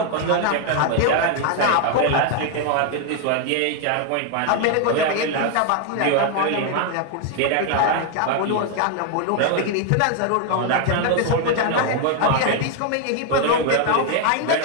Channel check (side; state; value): both; different; correlation 0.01